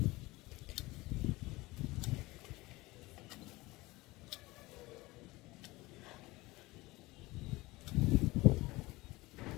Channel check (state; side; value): quieter; right; 20.9 dB